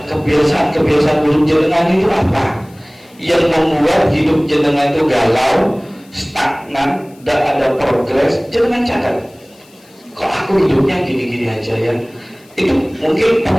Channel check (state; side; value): noise; left; hiss, 29 dB below the sound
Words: kebiasaan buruk jenengan itu apa yang membuat hidup jenengan itu galau, stagnan, tidak ada progres. Jenengan catat, kok aku hidupnya gini-gini aja ya. Itu mungkin